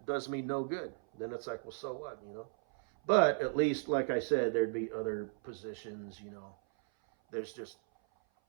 does me no good. Then it's like, well, so what, But at least, like I said, there'd be other positions, There's just,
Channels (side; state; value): left; silent; 54 dB below the other